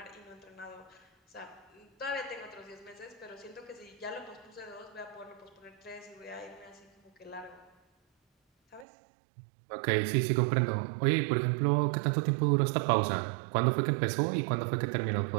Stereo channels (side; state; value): left; drops out; at 8.8 s